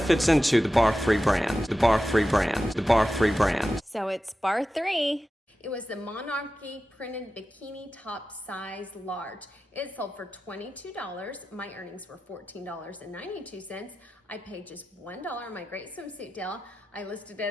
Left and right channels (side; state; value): both; normal; correlation 0.93